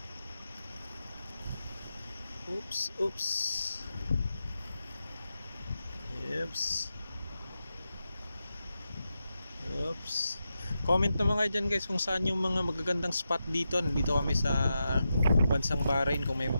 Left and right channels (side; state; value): both; inverted; correlation -0.89